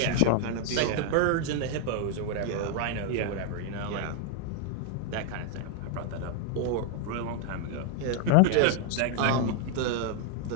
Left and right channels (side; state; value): both; different; correlation 0.00